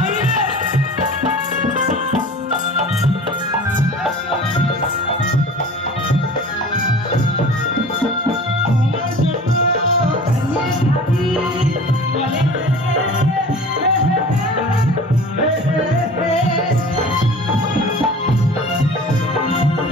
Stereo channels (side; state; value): both; normal; correlation 0.41